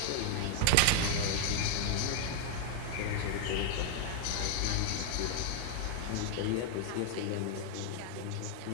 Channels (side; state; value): both; different; correlation 0.00